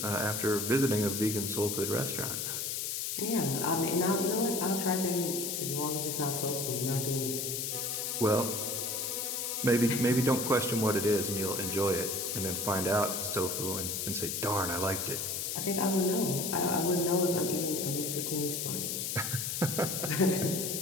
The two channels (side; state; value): left; noise; hiss, 2 dB below the sound